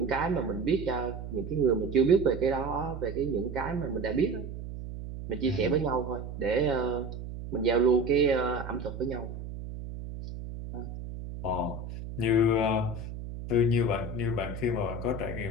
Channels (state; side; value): noise; right; hum, 9 dB below the sound